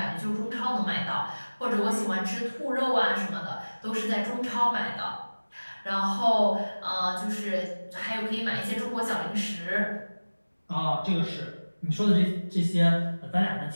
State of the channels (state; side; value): inverted; both; correlation -1.00